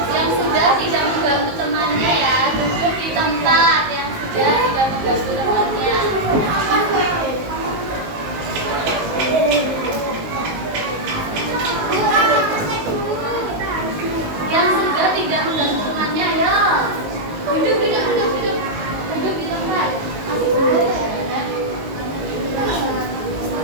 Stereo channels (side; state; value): left; late; 19 ms